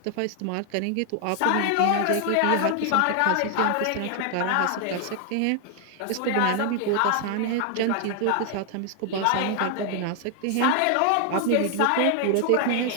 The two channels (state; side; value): different; both; correlation 0.00